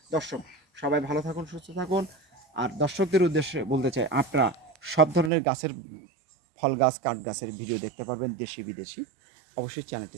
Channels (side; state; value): left; drops out; at 5.3 s